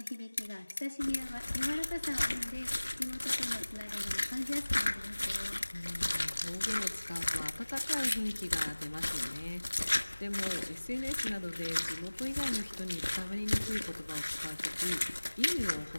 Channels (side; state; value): both; inverted; correlation -1.00